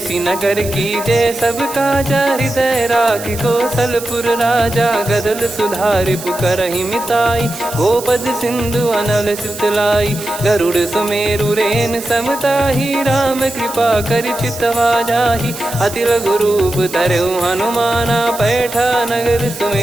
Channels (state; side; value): noise; right; hiss, 12 dB below the sound